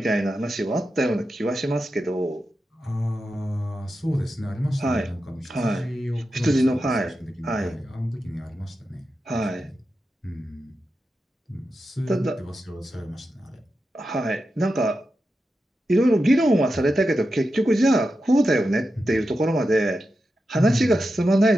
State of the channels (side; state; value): both; normal; correlation 0.90